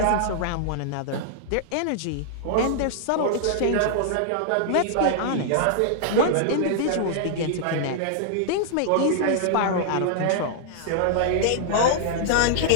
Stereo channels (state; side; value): different; both; correlation -0.01